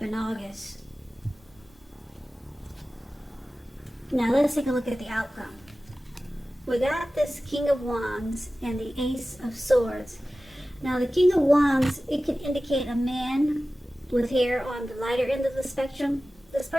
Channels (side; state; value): both; normal; correlation 0.96